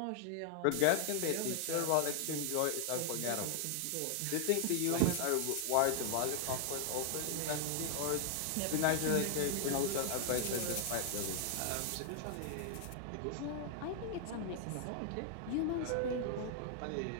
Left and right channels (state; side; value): different; both; correlation 0.00